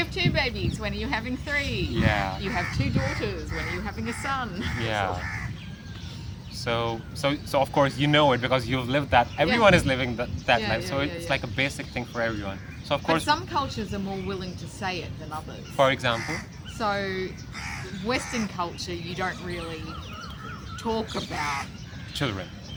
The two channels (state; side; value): identical; both; correlation 1.00